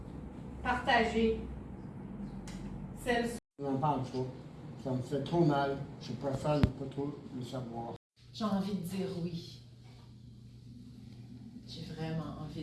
partagée, celle. Je n'en parle pas. Ça me fait trop mal. Je préfère ne pas trop le savoir. J'ai envie de dire oui. J'ai vraiment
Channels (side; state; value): both; identical; correlation 1.00